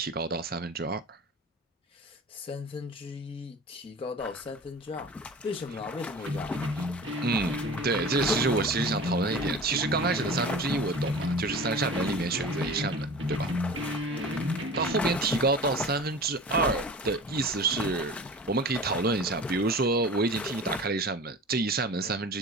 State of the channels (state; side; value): normal; both; correlation 0.37